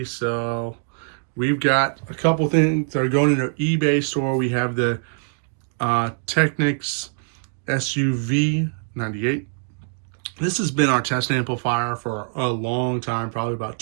We've got a couple things that are going in our eBay store. We have the Technics SUV 98. This has been our test amplifier for a long time, probably about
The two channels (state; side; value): silent; left; digital silence